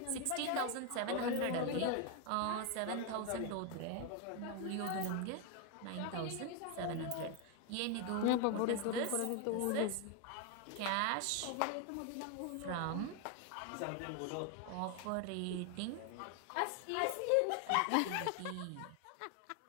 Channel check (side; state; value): both; different; correlation 0.01